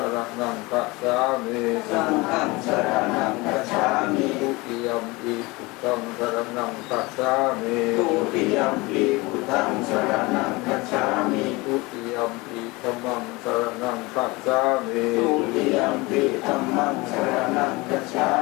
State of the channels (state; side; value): quieter; right; 23.6 dB